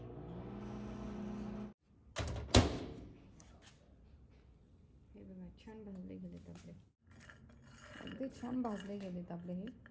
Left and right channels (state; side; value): identical; both; correlation 1.00